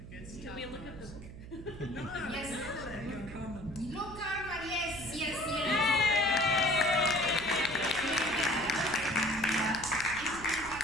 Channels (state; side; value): noise; right; hum, 14 dB below the sound